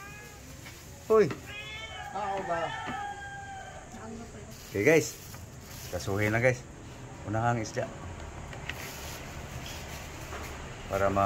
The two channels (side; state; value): both; identical; correlation 1.00